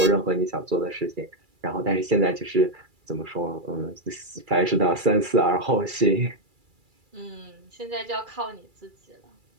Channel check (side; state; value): left; late; 2.3 ms